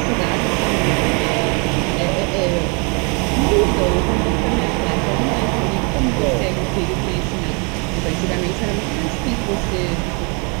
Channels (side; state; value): left; quieter; 33.4 dB